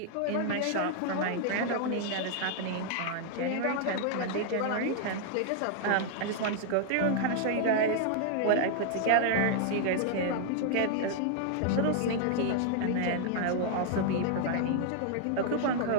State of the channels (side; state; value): both; different; correlation 0.00